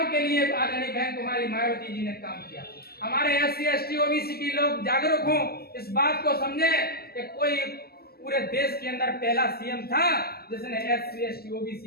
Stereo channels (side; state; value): right; late; 0.45 ms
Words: के लिए आदरणीय बहन कुमारी मायावती जी ने काम किया। हमारे SC ST OBC की लोग जागरूक हों, इस बात को समझे कि कोई पूरे देश के अंदर पहला CM था जिसने SC ST OBC